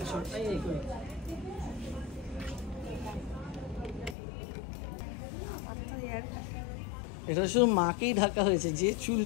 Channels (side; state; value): right; drops out; at 4.2 s